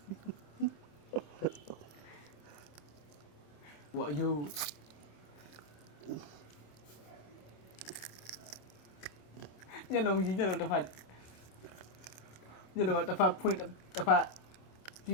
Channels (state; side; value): late; right; 27 ms